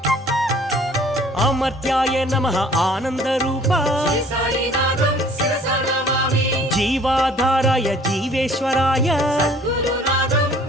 అమర్త్యాయ నమః ఆనందరూప జీవాధారాయ జీవేశ్వరాయ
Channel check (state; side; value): normal; both; correlation 0.54